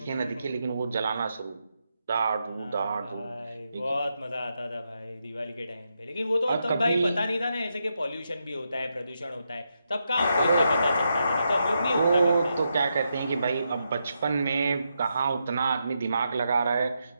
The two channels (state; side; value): inverted; both; correlation -0.83